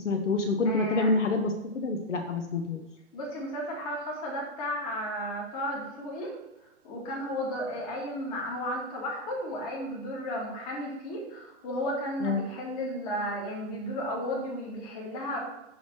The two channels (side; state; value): both; normal; correlation 0.05